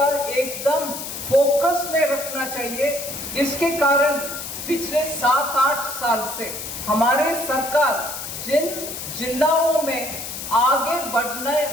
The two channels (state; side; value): noise; left; hiss, 7 dB below the sound